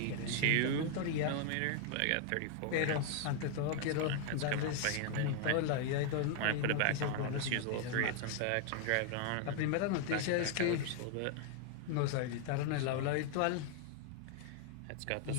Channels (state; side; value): different; both; correlation 0.00